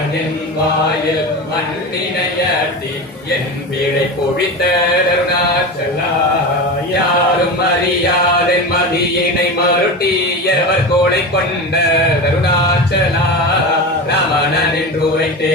வாயில் மண்ணினையட்டி என் பிழை பொழித்த அருணாச்சலா யாரும் அறியாதென் மதியினை மருட்டியவர் கோளை கொண்ட அருணாச்சலா ரமணன் என்று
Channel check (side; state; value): both; normal; correlation 0.25